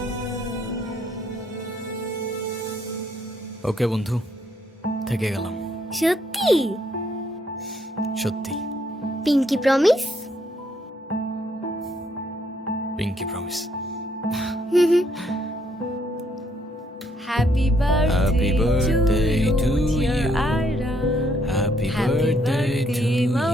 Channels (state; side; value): normal; both; correlation 0.71